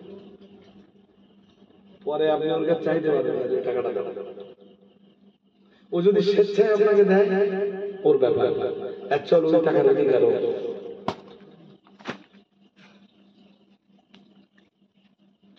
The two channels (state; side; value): identical; both; correlation 1.00